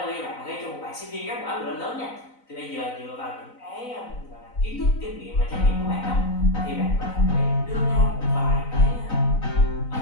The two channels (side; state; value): right; late; 4.0 ms